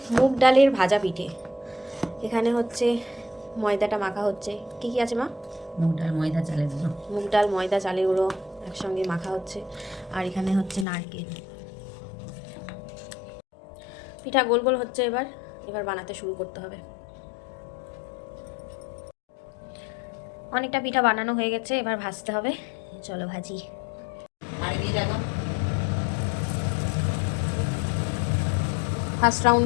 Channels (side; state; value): right; drops out; at 10.9 s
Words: মুগ ডালের ভাজা পিঠে। এখানে হচ্ছে ময়দাটা মাখা হচ্ছে। কি কি আছে মা? মুগ ডাল, ময়দা, চালের গুঁড়ো। মুগ ডাল, ময়দা, চালের গুঁড়ো একসঙ্গে মাখা হচ্ছে। আর এখানে হচ্ছে নারকেল। পিঠা গোল গোল হচ্ছে। এবার বানাতে শুরু করতে হবে। অনেকটা পিঠা বানানো হয়ে গেছে, এবার ভাজতে হবে। চলো ভাজি। ফার্স্ট রাউন্ড